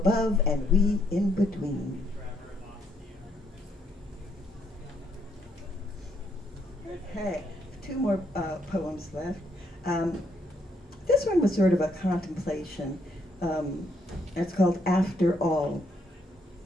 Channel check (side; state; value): both; normal; correlation 0.73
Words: and we in between. Okay, two more poems left. This one was sort of a contemplation. It's called After All.